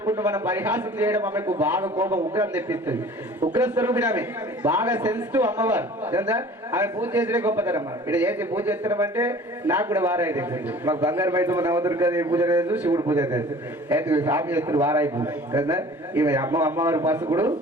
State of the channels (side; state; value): both; normal; correlation 0.46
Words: మనం పరిహాసం చేయడం ఆమెకు బాగా కోపం ఉగ్రం తెప్పిస్తుంది. ఉగ్ర స్వరూపిణి ఆమె, బాగా సెన్సిటివ్ అమ్మవారు. ఆమె పూజ చేసిన గొప్పతనం. ఇక్కడ చేసి పూజ చేస్తున్నాం అంటే నాకు కూడా వారాయి తెలిసింది. మాకు బంగారు బయట నవదుర్గదేవి పూజ లేదు, శివుడు పూజ తెలుసు. అయితే స్వామి చేస్తున్నారు వారాయి పూజ కదా. ఈమె అమ్మవారి పసుకుడు